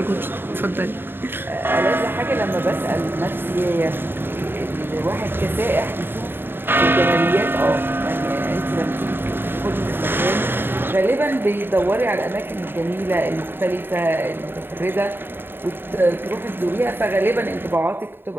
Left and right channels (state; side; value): late; left; 0.10 ms